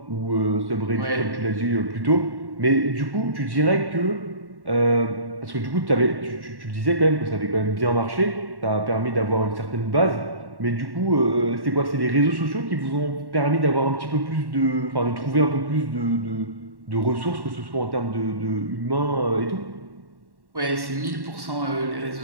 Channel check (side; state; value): left; late; 1.1 ms